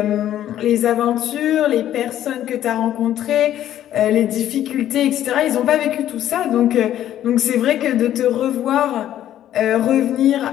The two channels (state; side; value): quieter; right; 11.8 dB